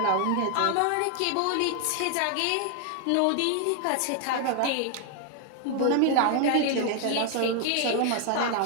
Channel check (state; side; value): different; both; correlation 0.00